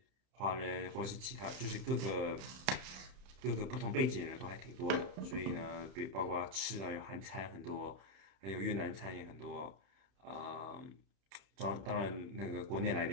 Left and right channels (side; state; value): left; late; 31 ms